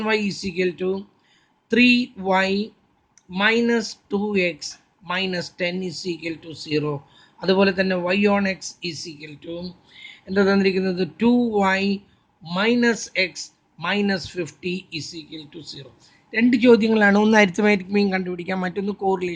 y is equal to 3y minus 2x minus 10 is equal to 0. അതുപോലെ തന്നെ y on x is equal to എന്താ തന്നിരിക്കുന്നത് 2y minus x minus 50 is equal to 0. 2 ചോദ്യങ്ങളാണ്, ഒന്ന് അരിത്തമാറ്റിക് മീൻ കണ്ടുപിടിക്കാം, മറ്റൊന്ന്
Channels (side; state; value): both; identical; correlation 1.00